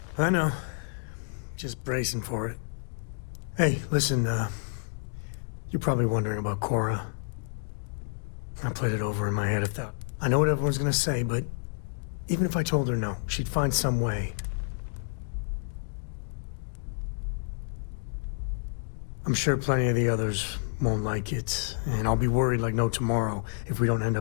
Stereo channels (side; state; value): right; silent; digital silence